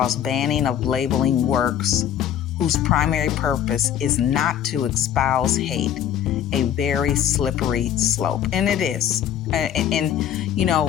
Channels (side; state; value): right; quieter; 10.1 dB